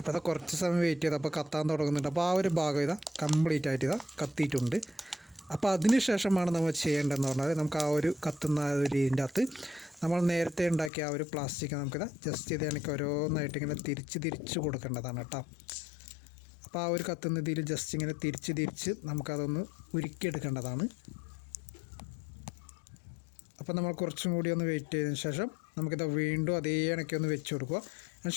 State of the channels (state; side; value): drops out; right; at 10.9 s